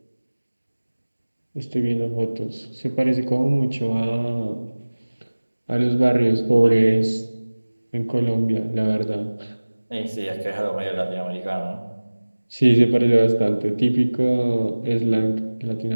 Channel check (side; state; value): both; inverted; correlation -1.00